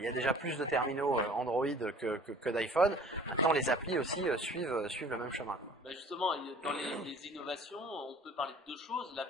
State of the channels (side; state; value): both; normal; correlation 0.48